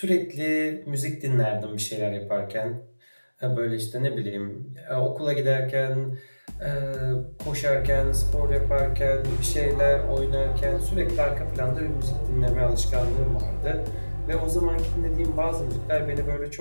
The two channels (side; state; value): both; inverted; correlation -1.00